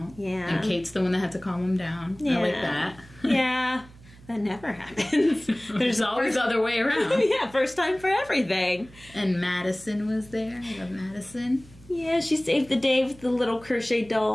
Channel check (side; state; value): right; noise; hum, 23 dB below the sound